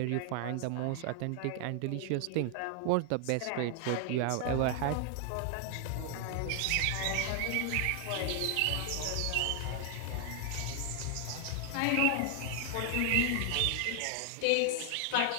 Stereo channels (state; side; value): different; both; correlation 0.00